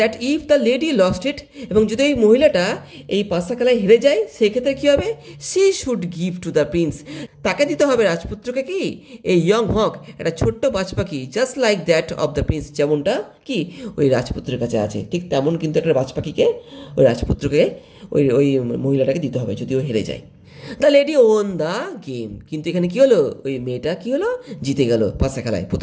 if the lady lost it, এবং যদি ওই মহিলাটা এই পাশা খেলায় হেরে যায়, সেক্ষেত্রে কী হবে? She should give to the prince, তাকে দিতে হবে রাজপুত্রকে কি এই ইয়ং হক, একটা ছোট্ট বাজ পাখি, just like that of the prince, যেমনটা কি ওই রাজপুত্রের কাছে আছে, ঠিক তেমন কিন্তু একটা বাজ পাখিকে ওই রাজপুত্রকে ওই মহিলাটাকে দিতে হবে যদি ও হেরে যায়। The lady won the game, কিন্তু এখানে কী হলো? ওই মেয়েটা কী হলো? জিতে গেল পাশা খেলায়,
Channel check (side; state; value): both; identical; correlation 1.00